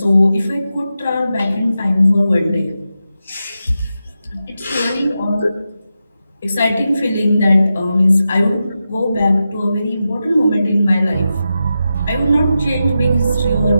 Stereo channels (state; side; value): inverted; both; correlation -0.89